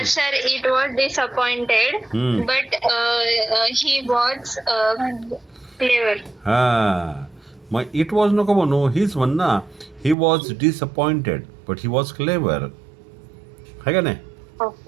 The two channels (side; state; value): left; drops out; at 10.2 s